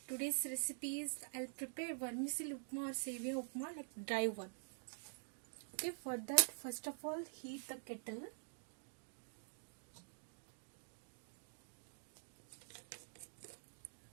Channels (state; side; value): silent; left; digital silence